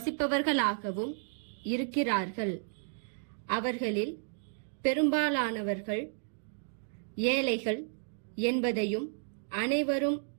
இருக்கிறார்கள். அவர்களில் பெரும்பாலானவர்கள் ஏழைகள் என்பதையும் அனைவரும்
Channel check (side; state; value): left; silent; digital silence